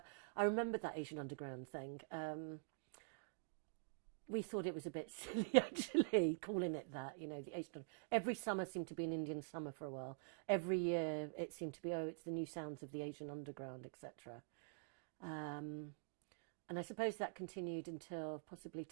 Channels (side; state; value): left; silent; digital silence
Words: I remember that Asian Underground thing. We thought it was a bit silly, actually, calling it that, the Asian. Every summer seemed to be an Indian summer for a while. Every year it seemed to be, it's the new sounds of the Asian Underground, etc. And I suppose that continued until possibly